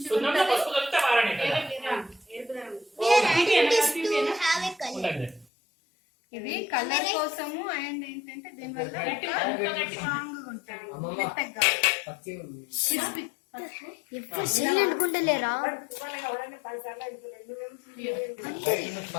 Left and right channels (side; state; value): right; drops out; at 5.5 s